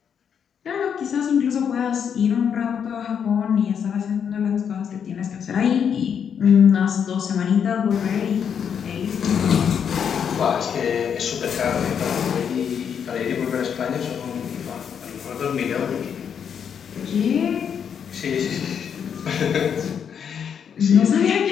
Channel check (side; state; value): right; quieter; 7.7 dB